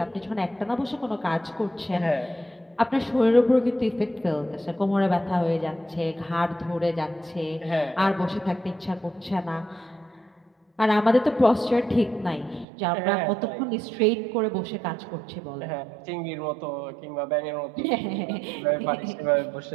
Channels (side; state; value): left; drops out; at 12.7 s